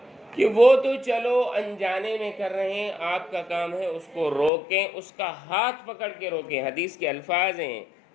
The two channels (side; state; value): right; drops out; at 4.5 s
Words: کہ وہ تو چلو انجانے میں کر رہے ہیں، آپ کا کام ہے اس کو روکیں، اس کا ہاتھ پکڑ کے روکیں۔ حدیث کے الفاظ ہیں،